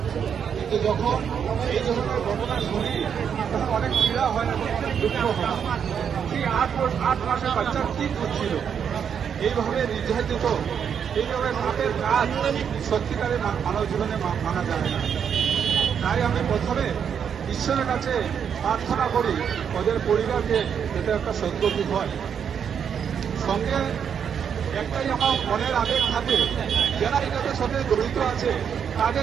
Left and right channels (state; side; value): quieter; left; 7.7 dB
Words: কিন্তু যখন এই ধরনের ঘটনা শুনি তখন অনেক পীড়া হয় এবং দুঃখ হয়। সেই 8 মাসের বাচ্চা কি করছিল, এইভাবে নির্যাতিত, এইভাবে পাপের কাজ সত্যিকারে মানব জীবনে মানা যায় না। তাই আমি প্রথমে ঈশ্বরের কাছে প্রার্থনা করি ওদের পরিবারকে এটা একটা সদ্গতি হয়। সঙ্গে একটাই আমার মনের আবেগ থাকে, যারা এটাদের সাথে জড়িত আছে